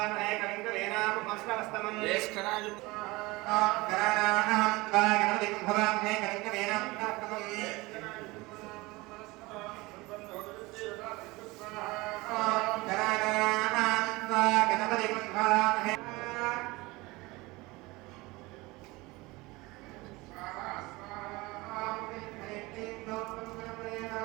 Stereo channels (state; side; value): quieter; left; 22.3 dB